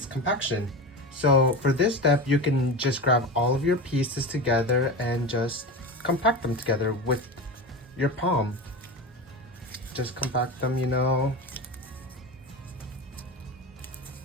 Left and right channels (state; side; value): normal; both; correlation 0.26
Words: compaction. So for this step, you can just grab all of your pieces together and just compact them together with your palm. Just compact them, you know.